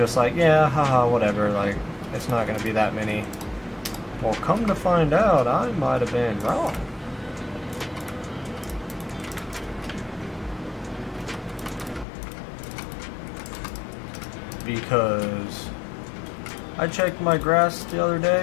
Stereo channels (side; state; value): right; drops out; at 12.1 s